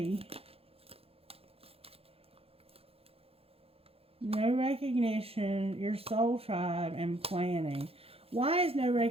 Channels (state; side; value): late; left; 0.28 ms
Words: No recognition, your soul tribe, and planning. Why is no